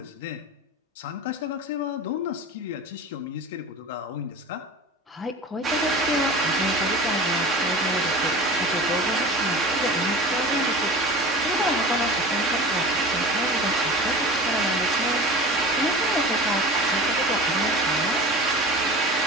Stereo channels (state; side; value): normal; both; correlation 0.36